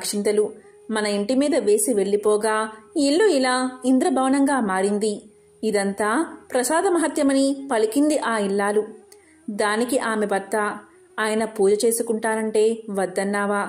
మన ఇంటి మీద వేసి వెళ్లిపోగా ఇల్లు ఇలా ఇంద్రభవనంగా మారింది. ఇదంతా ప్రసాద మహత్యమని పలికింది ఆ ఇల్లాలు. దానికి ఆమె భర్త, ఆయన పూజ చేసుకుంటానంటే వద్దన్నావా?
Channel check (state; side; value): identical; both; correlation 1.00